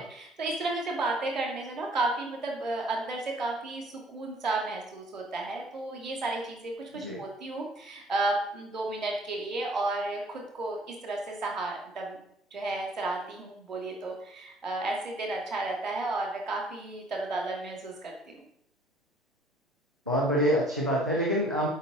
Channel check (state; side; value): normal; both; correlation 0.56